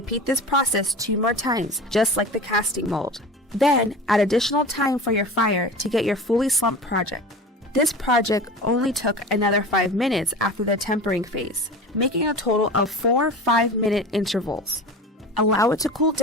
this process 2 more times, just like the casting mold. Then add additional time for your fire to get your fully slumped project. This project only took another 5 minutes after the tempering phase, making a total of 4 5-minute intervals. Allow it to cool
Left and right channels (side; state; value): both; normal; correlation 0.33